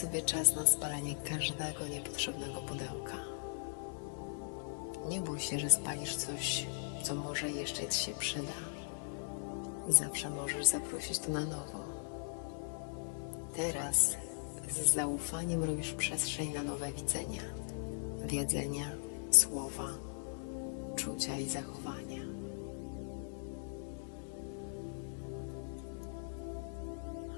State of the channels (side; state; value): right; silent; digital silence